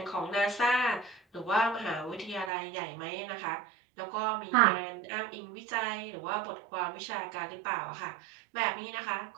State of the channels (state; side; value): drops out; left; at 2.5 s